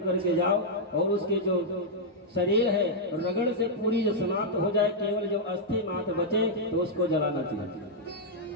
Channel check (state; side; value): normal; both; correlation -0.06